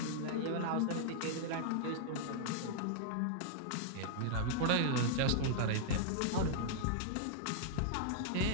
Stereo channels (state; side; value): different; both; correlation -0.01